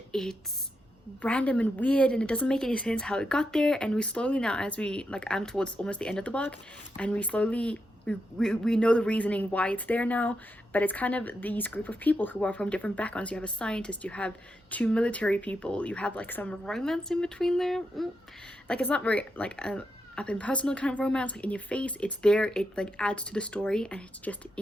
it's random and weird and it doesn't make any sense how it got there. And we slowly now, as we like, I'm towards almost the end of the book, and we slowly we know the reasoning why it's there now. But it's kind of these group of people who are from different backgrounds. You have a scientist, you have two military people, you have like some romance in between there. Like, it's not very like up in personal kind of romance, like in your face. It's there, it like adds to the story, and it's just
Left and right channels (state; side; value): normal; both; correlation 0.84